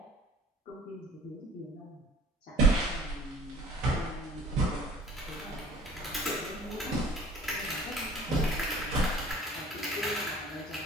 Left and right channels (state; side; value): normal; both; correlation 0.50